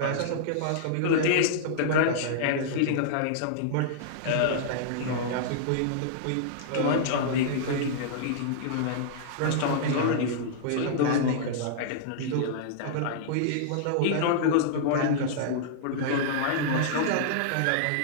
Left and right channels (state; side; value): different; both; correlation -0.02